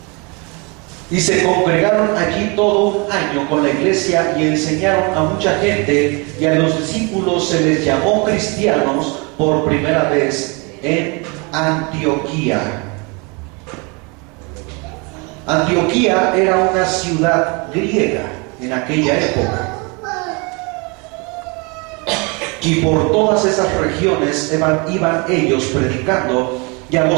y se congregaron allí todo un año con la iglesia y enseñaron a mucha gente, y a los discípulos se les llamó cristianos por primera vez en Antioquía. Antioquía era una ciudad griega en aquella época. Y por todas esas regiones iban ellos predicando, y a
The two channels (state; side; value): quieter; left; 30.3 dB